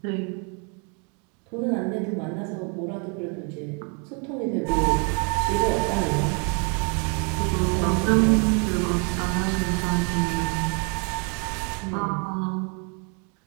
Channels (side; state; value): left; quieter; 35.7 dB